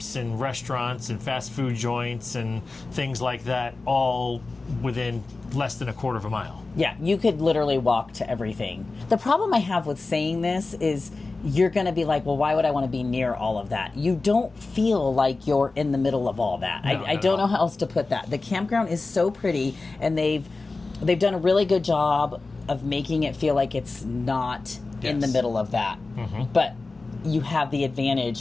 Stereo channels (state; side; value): quieter; right; 3.6 dB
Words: and restaurants and fast food joints and things like that, all within less than a quarter of a mile. Yeah, you could literally walk to everything. The problem I have with saying this is you're going to be like, well, why would I want to be near all of that? You don't feel like you're in the middle of all that. No, I don't know how else to put that. The campground is so pretty, and they've done a really good job of making it feel like it's not in the middle of that. But you have the